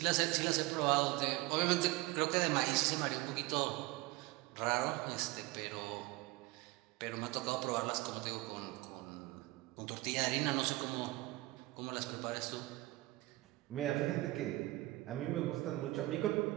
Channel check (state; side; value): quieter; left; 20.0 dB